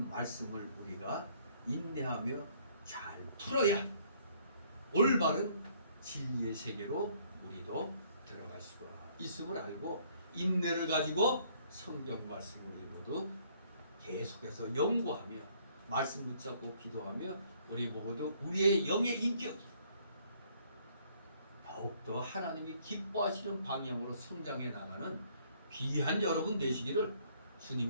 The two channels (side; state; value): both; inverted; correlation -0.62